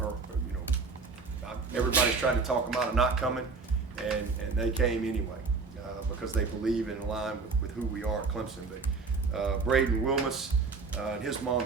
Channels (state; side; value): quieter; left; 4.4 dB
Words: everybody's tried to talk them out of not coming, and they came anyway because they believe in line with who we are at Clemson. But Braden Wilmus and his mom